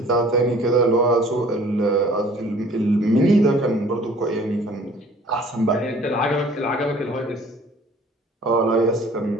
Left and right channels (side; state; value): both; normal; correlation 0.52